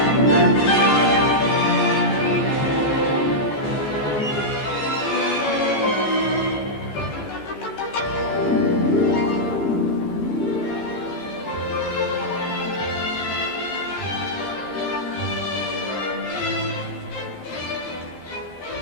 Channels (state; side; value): late; right; 14 ms